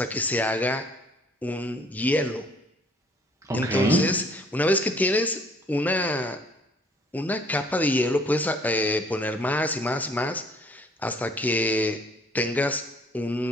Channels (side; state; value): both; normal; correlation 0.59